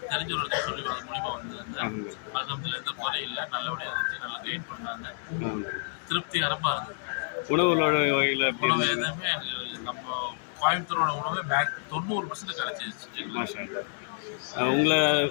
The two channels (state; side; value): silent; right; digital silence